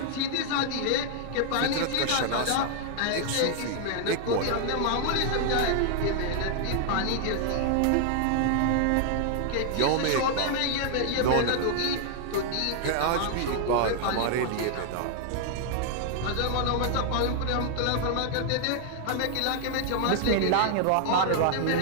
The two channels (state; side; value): different; both; correlation 0.00